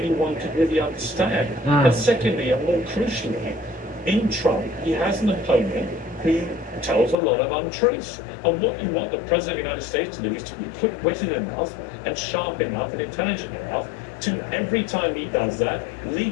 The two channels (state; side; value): drops out; right; at 7.2 s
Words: could really understand. And secondly, and more crucially, in Trump, he has an opponent who tells a lot of untruths. And what you want the President of the United States to do is to be quick-witted enough and sharp enough and intelligent enough to every time he does that,